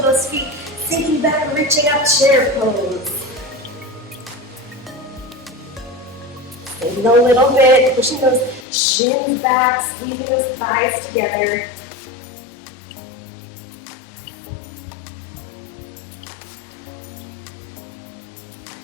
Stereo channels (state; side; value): drops out; right; at 8.7 s